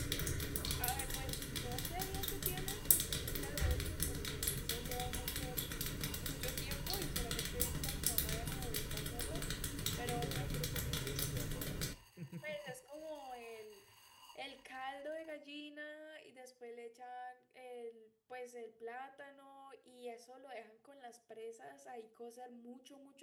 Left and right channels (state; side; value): identical; both; correlation 1.00